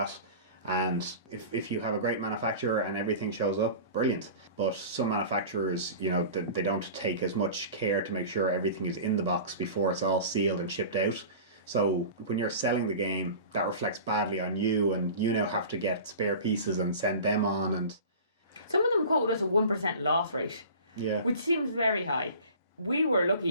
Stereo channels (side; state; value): both; inverted; correlation -0.38